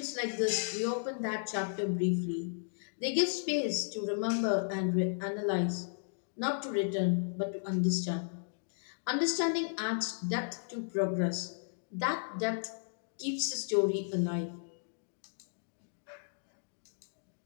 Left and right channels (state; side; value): silent; right; digital silence